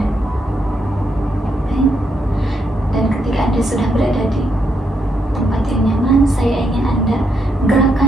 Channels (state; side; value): normal; both; correlation 0.78